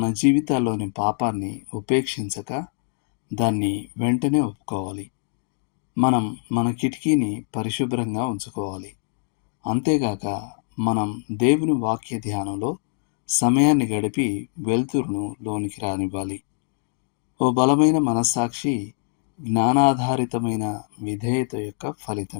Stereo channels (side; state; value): right; silent; digital silence